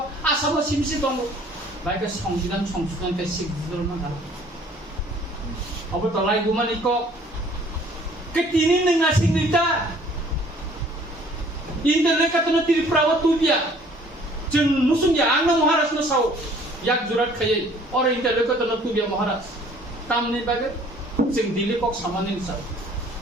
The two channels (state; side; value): normal; both; correlation 0.55